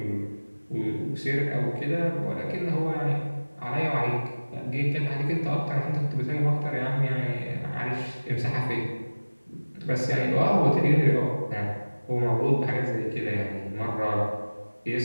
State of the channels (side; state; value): both; inverted; correlation -1.00